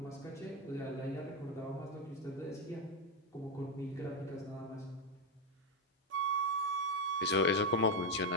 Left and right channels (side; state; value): both; normal; correlation 0.07